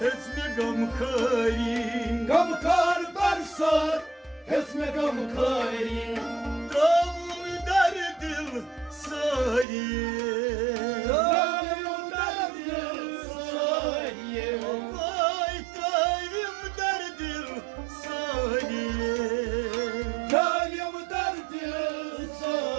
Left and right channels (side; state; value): left; drops out; at 9.7 s